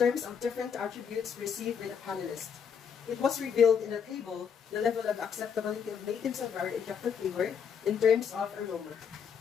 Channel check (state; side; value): quieter; right; 7.1 dB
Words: of different attributes received by the panelists. It was revealed in the table the level of acceptability of native Sangaro and jackfruit flavor in terms of aroma.